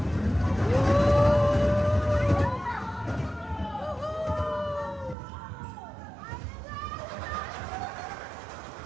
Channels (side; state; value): left; drops out; at 5.2 s